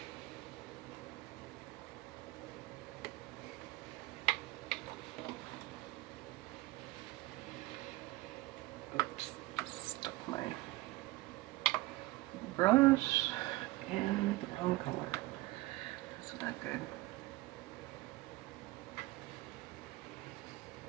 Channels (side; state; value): left; quieter; 19.6 dB